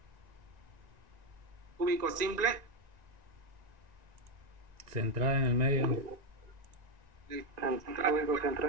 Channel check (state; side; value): late; left; 1.9 ms